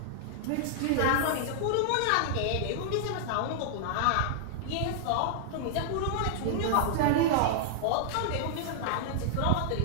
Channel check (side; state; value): both; different; correlation -0.01